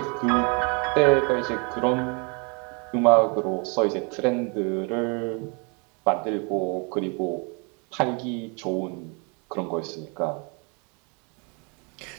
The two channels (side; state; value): left; quieter; 34.1 dB